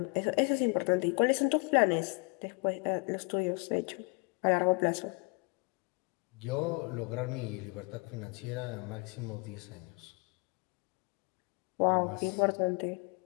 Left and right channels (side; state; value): right; quieter; 31.7 dB